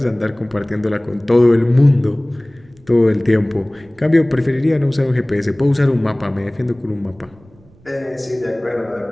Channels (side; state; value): right; noise; rumble, 29 dB below the sound